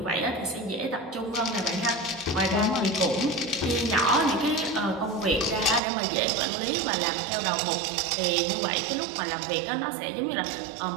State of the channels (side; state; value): left; drops out; at 5.8 s